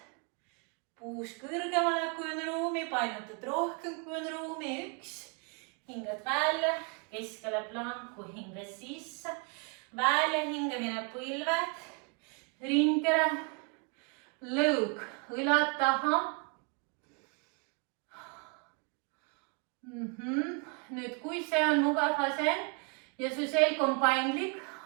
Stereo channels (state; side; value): quieter; left; 35.1 dB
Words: Puus kõrgemale, kui on ruumi, painutad rohkem, kui on ruumi, 1. Hingad välja, keskele planku, hinga sisse, välja hingamine põlved, ringkera, lõug, õlad taha. Nüüd, kui see on mugav asend ja su selg on paindlik,